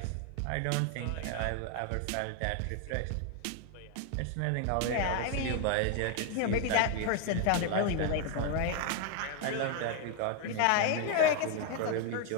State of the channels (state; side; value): different; both; correlation 0.01